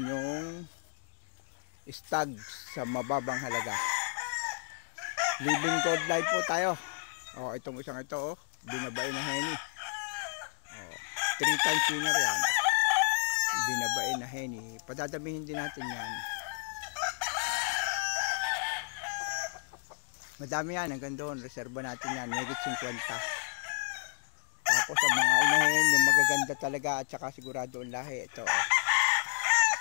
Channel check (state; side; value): silent; right; digital silence